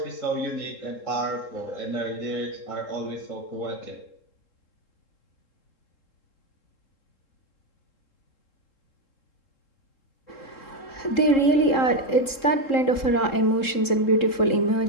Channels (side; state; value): right; late; 3.7 ms